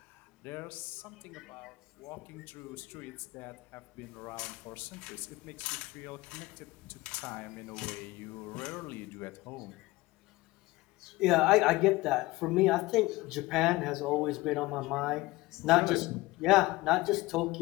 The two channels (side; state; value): right; quieter; 20.2 dB